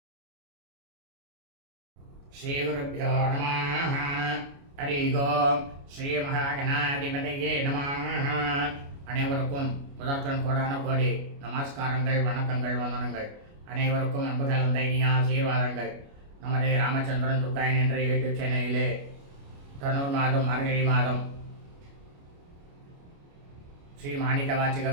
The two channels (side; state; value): left; late; 29 ms